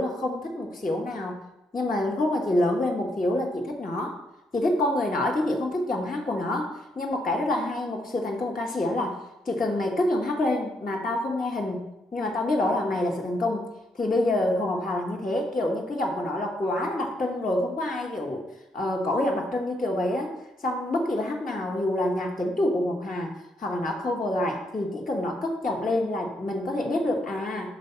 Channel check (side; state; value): both; normal; correlation 0.76